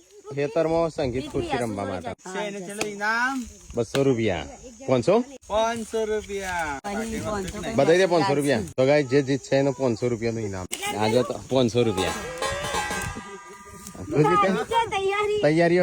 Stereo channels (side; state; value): both; identical; correlation 1.00